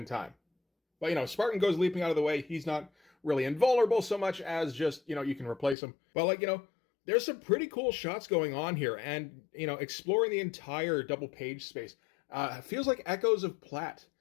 time. But, Spartan goes leaping out of the way. He's not really invulnerable so much as just, you can replace him. But, there's some pretty cool shots going on here, and, exploring the entire double page space feels like echoes of Platt.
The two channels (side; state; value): right; drops out; at 5.8 s